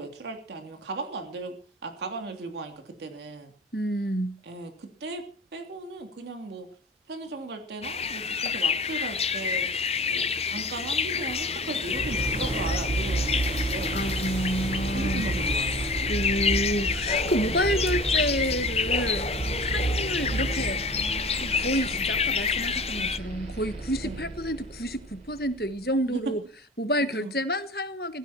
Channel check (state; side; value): normal; both; correlation 0.39